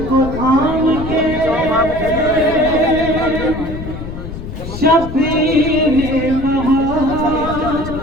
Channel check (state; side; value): noise; left; rumble, 9 dB below the sound